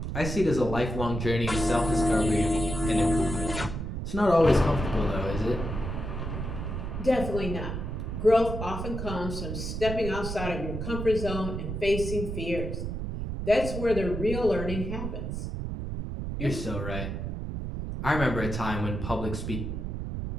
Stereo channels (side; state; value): right; noise; rumble, 4 dB below the sound